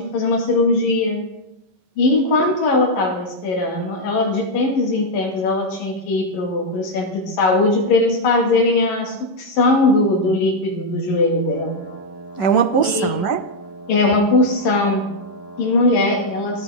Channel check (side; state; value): right; late; 11 ms